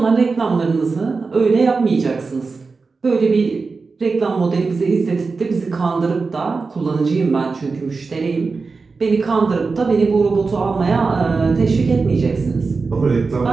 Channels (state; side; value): quieter; left; 4.3 dB